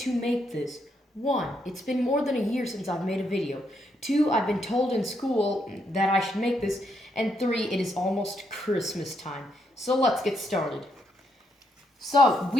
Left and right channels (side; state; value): both; normal; correlation 0.77